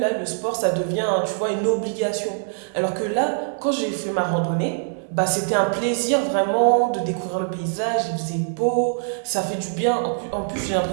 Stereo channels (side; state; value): left; silent; 63 dB below the other